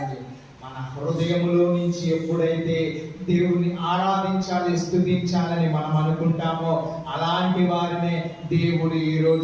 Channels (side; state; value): both; identical; correlation 1.00